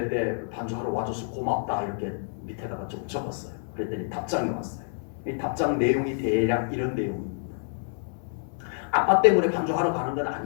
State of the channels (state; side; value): silent; right; 57 dB below the other